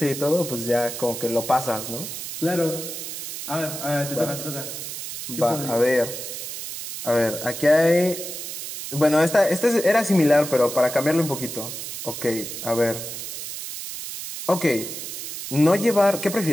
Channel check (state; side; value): noise; right; hiss, 8 dB below the sound